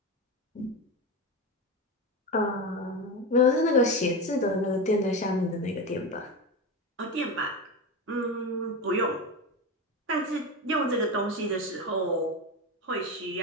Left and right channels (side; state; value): both; normal; correlation 0.19